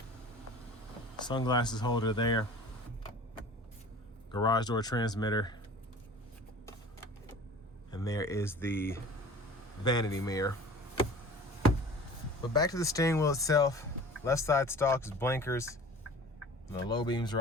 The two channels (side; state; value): both; normal; correlation 0.42